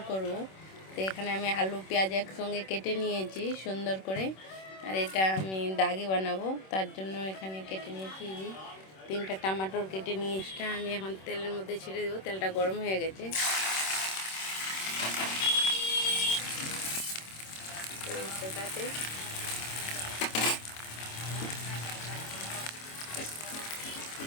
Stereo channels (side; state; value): right; late; 26 ms